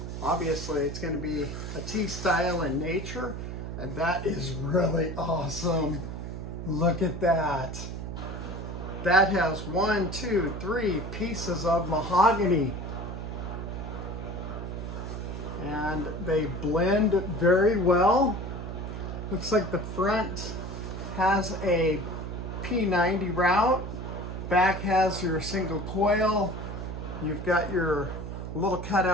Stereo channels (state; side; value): noise; right; hum, 7 dB below the sound